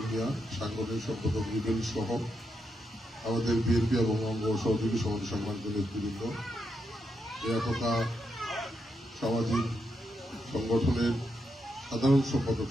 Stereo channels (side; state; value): both; normal; correlation 0.83